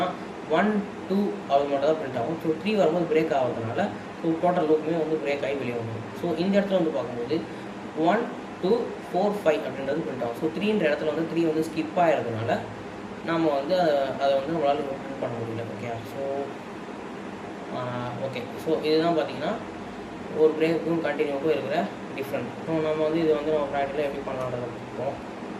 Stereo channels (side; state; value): both; identical; correlation 1.00